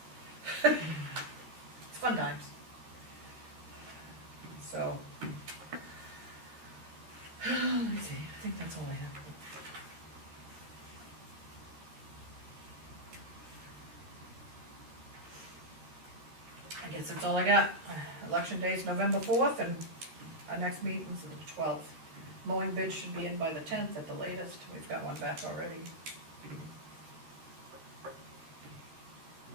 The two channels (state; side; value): late; left; 13 ms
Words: fun times. So, let me see, I think that's all I have. I guess that's all I got. Election day is November 4th, and our next meeting's the 12th. Mowing bids should be in by the 10th at the latest. We've got one back already.